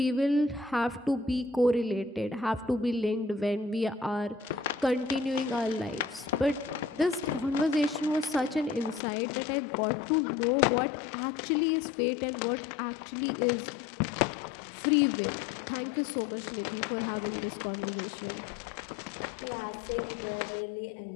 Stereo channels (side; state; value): right; drops out; at 9.0 s